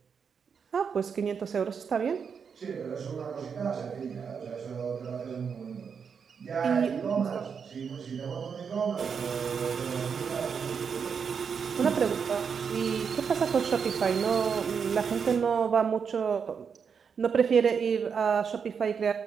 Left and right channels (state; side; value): quieter; left; 6.4 dB